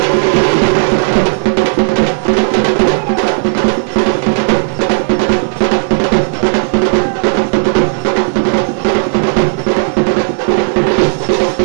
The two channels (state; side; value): silent; left; digital silence